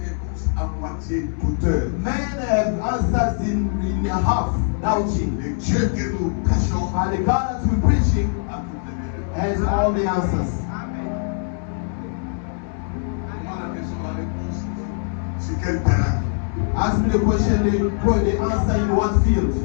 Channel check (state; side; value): silent; right; 60 dB below the other